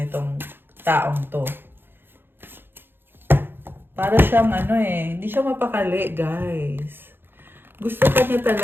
taong to? Para siyang hindi siya mapakali, guys. Gusto ka niya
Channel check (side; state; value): left; late; 0.10 ms